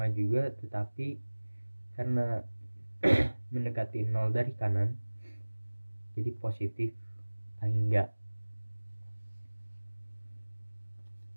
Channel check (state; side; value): inverted; both; correlation -1.00